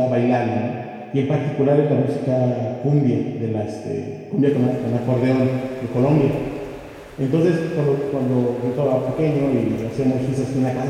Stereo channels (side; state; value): both; identical; correlation 1.00